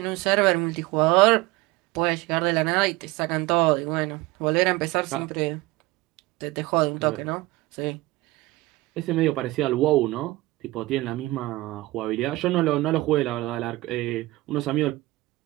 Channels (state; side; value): quieter; left; 19.9 dB